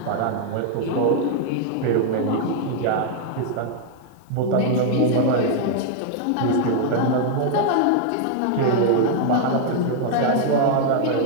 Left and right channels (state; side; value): different; both; correlation 0.00